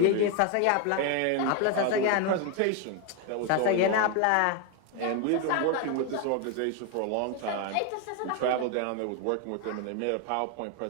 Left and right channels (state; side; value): different; both; correlation 0.01